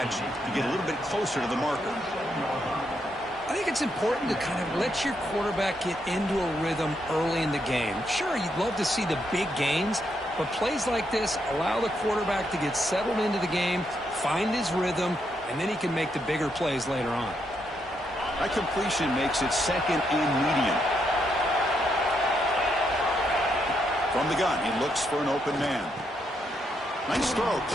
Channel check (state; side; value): normal; both; correlation 0.79